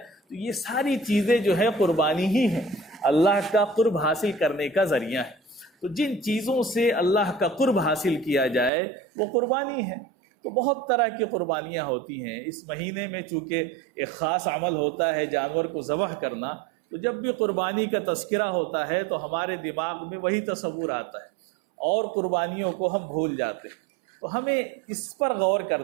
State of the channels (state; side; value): drops out; left; at 8.7 s